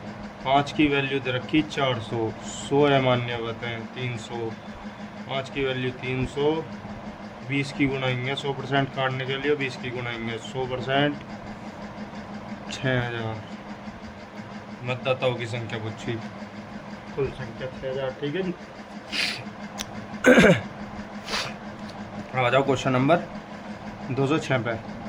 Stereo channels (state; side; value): identical; both; correlation 1.00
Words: 5 की वैल्यू दे रखी 400। 100 अमान्य बताएं 300। 5 की वैल्यू 300। 20 की गुनाएंगे 100% काटने के लिए 20 की गुनाएंगे 100% 6000। मतदाताओं की संख्या पूछी, कुल संख्या 6000। ठीक है जी। आ जाओ क्वेश्चन नंबर 206 पे।